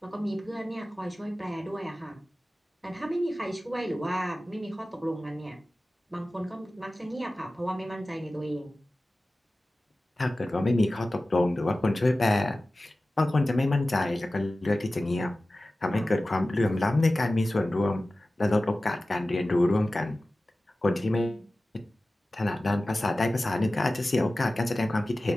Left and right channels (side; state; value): both; normal; correlation 0.96